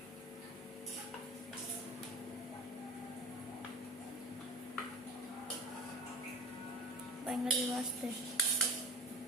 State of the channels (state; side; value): normal; both; correlation 0.38